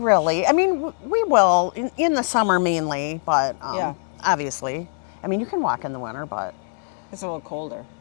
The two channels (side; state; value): right; silent; 56 dB below the other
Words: I mean, we will in the summer mainly, but Yeah. obviously. I mean, you can walk in the winter, but It's a little colder.